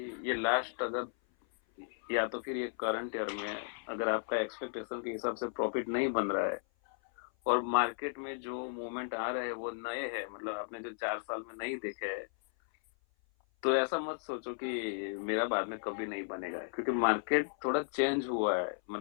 ये लास्ट, अगर या तो फिर ये करंट ईयर में अगर आपका एक्सपेक्टेशन के हिसाब से प्रॉफिट नहीं बन रहा है और मार्केट में जो मूवमेंट आ रहे हैं वो नए हैं, मतलब आपने जो 4 साल में नहीं देखे हैं, तो ऐसा मत सोचो कि मेरा बाद में कभी नहीं बनेगा, क्योंकि मार्केट थोड़ा चेंज हुआ है।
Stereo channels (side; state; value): right; silent; 55 dB below the other